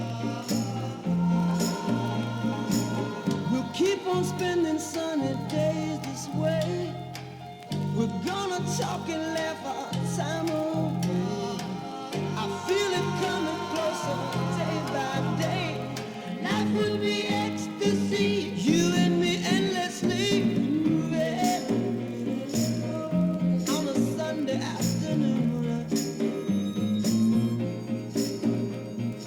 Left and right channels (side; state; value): both; identical; correlation 1.00